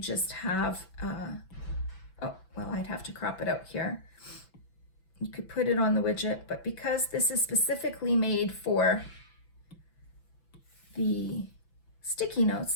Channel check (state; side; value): late; right; 6.0 ms